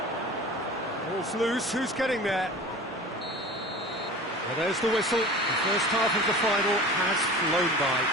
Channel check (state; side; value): normal; both; correlation 0.38